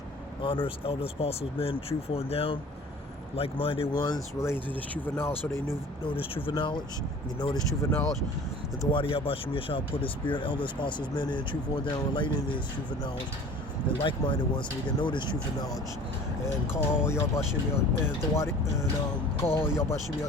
Honors, elders, apostles, men, truthful and down, like-minded ones relating to this truth of knowledge, so they know this truth of knowledge. You know this truth of knowledge. That the Wadi Yahweh Shem Yahweh put his spirit, elders, apostles, men, and truthful and down, relating to this truth of knowledge. And like-minded ones, so we can know this truth of knowledge. And call Yahweh Shem and the Wadi and call Yahweh Shem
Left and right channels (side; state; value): both; normal; correlation 0.45